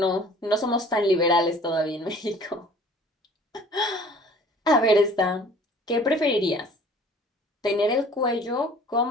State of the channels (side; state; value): both; normal; correlation 0.50